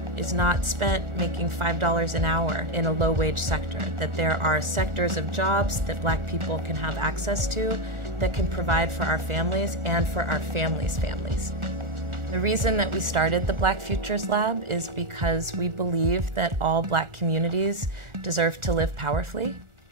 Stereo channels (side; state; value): left; late; 1.4 ms